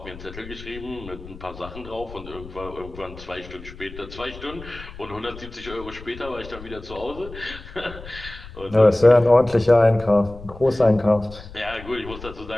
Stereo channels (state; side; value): noise; left; rumble, 15 dB below the sound